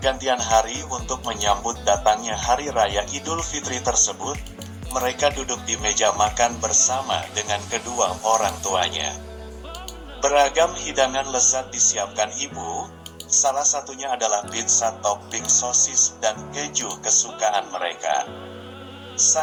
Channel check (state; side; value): identical; both; correlation 1.00